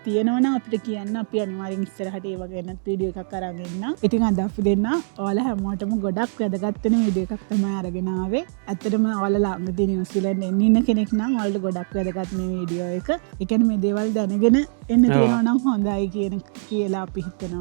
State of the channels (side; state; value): left; silent; digital silence